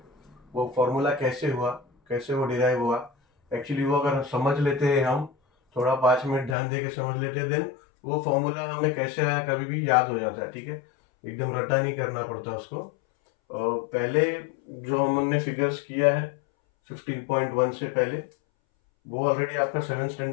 वो फॉर्मूला कैसे हुआ, कैसे वो डिराइव हुआ। एक्चुअली वो अगर समझ लेते हैं हम, थोड़ा 5 मिनट ध्यान दे के समझ लेते हैं, देन वो फॉर्मूला हमें कैसे आया कभी भी याद हो जाता है। ठीक है, एकदम रटा नहीं करना पड़ता उसको। और पहले जो हमने फिगर्स किया है 15.1 से पहले, वो ऑलरेडी आपका 7th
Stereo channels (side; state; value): right; drops out; at 6.6 s